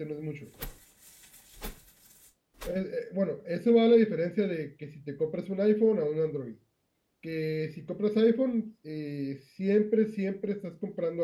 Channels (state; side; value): identical; both; correlation 1.00